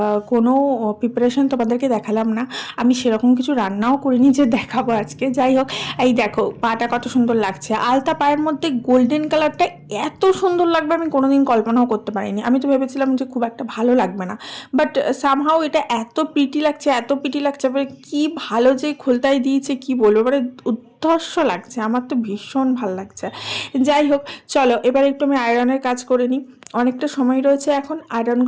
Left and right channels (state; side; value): identical; both; correlation 1.00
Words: কোনো প্রিপারেশন তোমাদেরকে দেখালাম না। আমি সেরকম কিছু রান্নাও করিনি যে দেখাবো আজকে। যাই হোক, এই দেখো পাটা কত সুন্দর লাগছে, আলতা পায়ের মধ্যে গোল্ডেন কালারটা এত সুন্দর লাগবে আমি কোনোদিন কল্পনাও করতে পারিনি। আমি তো ভেবেছিলাম যে খুব একটা ভালো লাগবে না, বাট সামহাও এটা এত প্রিটি লাগছে, এত প্রিটি লাগছে। মানে কি ভালো যে খোলতায় দিয়েছে, কি বলবো, মানে উদ্ধর্ষ লাগছে। আমার তো ভীষণ ভালো লাগছে। যাই হোক, চলো এবার একটু আমি আয়রনের কাজ করে নিই। অনেকটা সময় রয়েছে এখন,